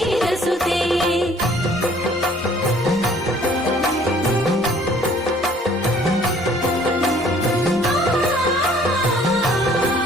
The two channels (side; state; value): both; normal; correlation 0.57